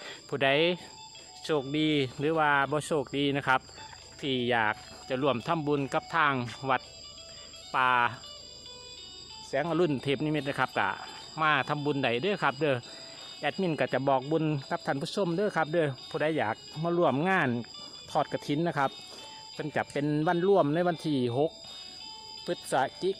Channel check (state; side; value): identical; both; correlation 1.00